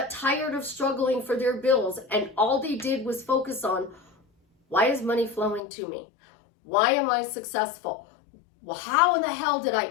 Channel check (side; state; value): right; drops out; at 5.6 s